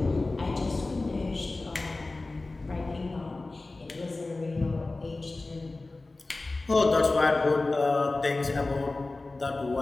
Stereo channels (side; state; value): right; quieter; 3.2 dB